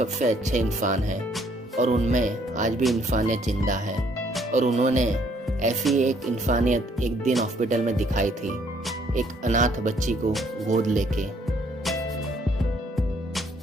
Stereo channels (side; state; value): both; normal; correlation 0.65